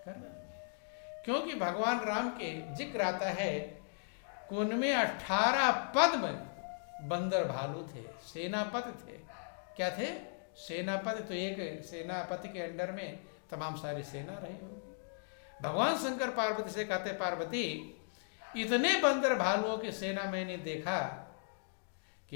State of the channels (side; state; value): right; silent; digital silence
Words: कर्म। क्योंकि भगवान राम के जिक्र आता है कि उनमें 18 पद में बंदर भालू थे, सेनापति थे। क्या थे? सेनापति। तो एक सेनापति के अंडर में तमाम सारी सेना रही होगी। भगवान शंकर पार्वती से कहते, पार्वती इतने बंदर भालुओं की सेना मैंने देखा